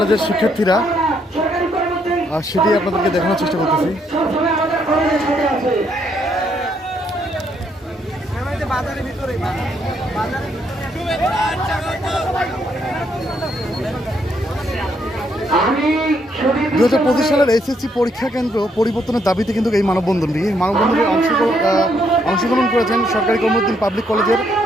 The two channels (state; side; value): normal; both; correlation 0.73